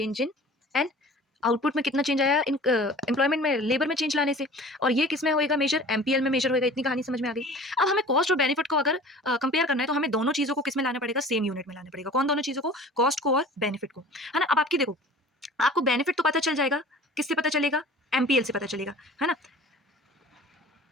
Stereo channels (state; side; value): normal; both; correlation 0.43